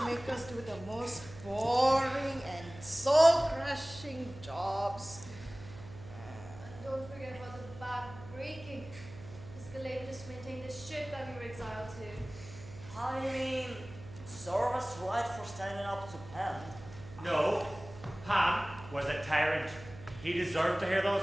makes us do the most boring and soul-crushing jobs. And don't forget about the back breaking. Physical labor just to maintain the ship that we were exiled to. I mean, serve us right for standing up to Pen. No, Pan was a tyrant. He deserved to hear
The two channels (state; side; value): noise; right; hum, 16 dB below the sound